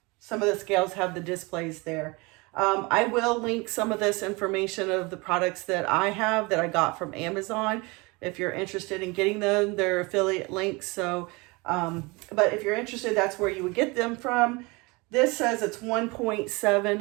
some of the scales have the displays there. I will link some of this information of the products that I have that I got from Amazon. If you're interested in getting them, they're affiliate links. So, but if you're interested, that's where you would get them from. This says it's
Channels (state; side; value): quieter; left; 26.2 dB